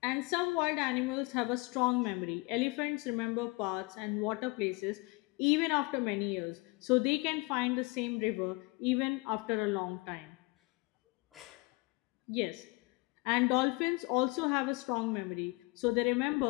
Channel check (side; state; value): right; quieter; 26.0 dB